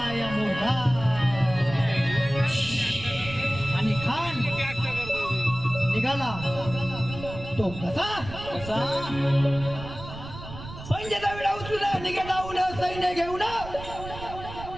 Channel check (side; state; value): right; noise; rumble, 12 dB below the sound